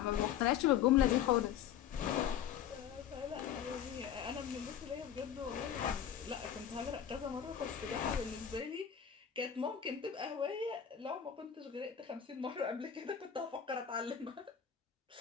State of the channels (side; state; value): right; quieter; 9.1 dB